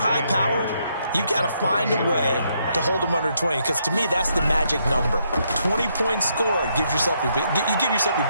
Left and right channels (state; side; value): inverted; both; correlation -0.75